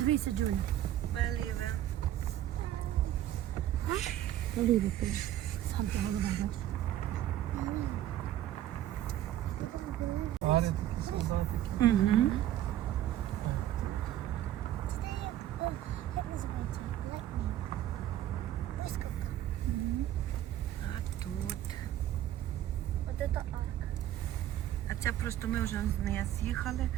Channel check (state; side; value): quieter; left; 12.5 dB